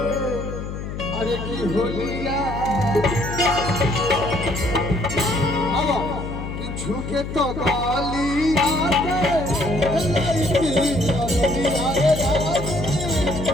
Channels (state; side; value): noise; left; hum, 7 dB below the sound